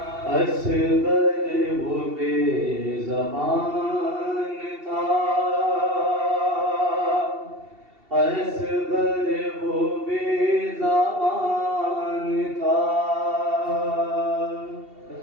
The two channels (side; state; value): left; late; 2.7 ms